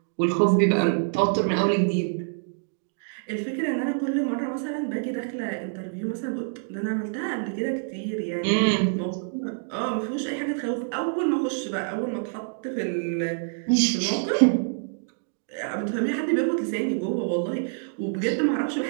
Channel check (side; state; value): left; silent; digital silence